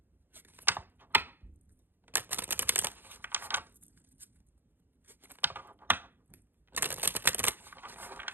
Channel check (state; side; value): late; left; 0.097 ms